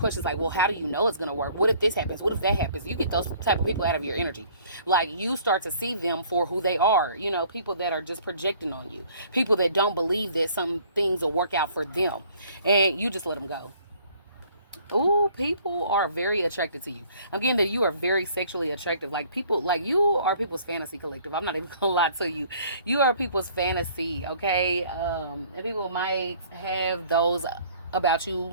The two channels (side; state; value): both; inverted; correlation -0.56